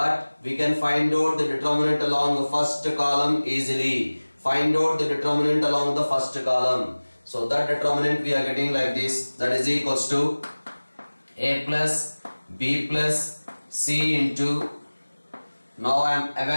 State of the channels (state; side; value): inverted; both; correlation -1.00